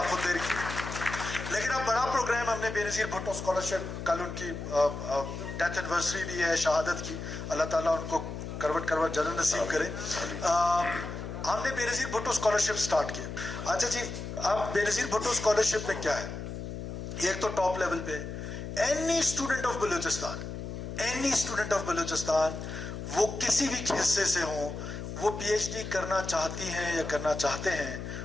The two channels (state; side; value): noise; left; hum, 7 dB below the sound